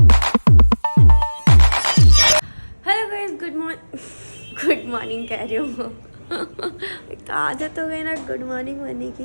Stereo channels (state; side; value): inverted; both; correlation -1.00